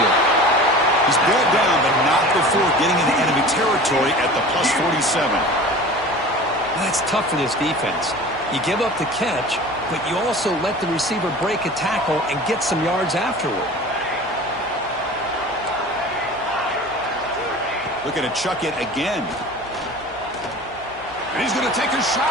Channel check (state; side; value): noise; left; hum, 23 dB below the sound